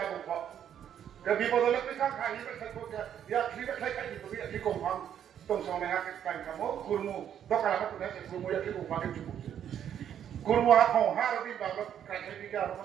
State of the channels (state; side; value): quieter; left; 9.5 dB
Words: বলব বিপদলে পিঠা খাই বেখাই কোকে ইয়া খ্রি বেখাই খাই তো ইয়া কি কমফাম তং সনে হা কাই কামো কুরমু দকালা তো না কুরমু ইয়া কি কমফাম চুবু কুরমু হা খ হা রবি বাবা কাই খাই বিগা আর